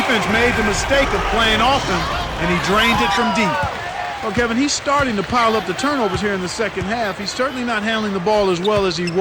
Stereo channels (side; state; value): both; identical; correlation 1.00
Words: made the mistake of playing off him, and he drained it from deep. Well, Kevin, he's starting to pile up the turnovers here in the second half. He's certainly not handling the ball as well as he